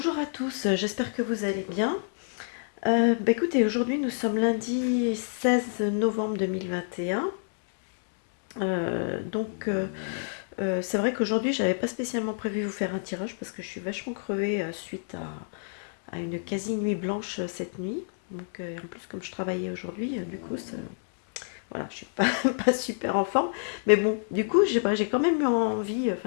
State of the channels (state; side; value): silent; right; digital silence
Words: à tous, j'espère que vous allez bien. Écoutez, aujourd'hui nous sommes lundi 16 novembre 2021. C'est vrai qu'aujourd'hui j'avais pas spécialement prévu vous faire un tirage parce que je suis vachement crevée suite à une quasi nuit blanche cette nuit. En plus comme je travaillais aujourd'hui, voilà, je suis pas, pas super en forme. Mais bon, du coup, j'ai quand même eu envie,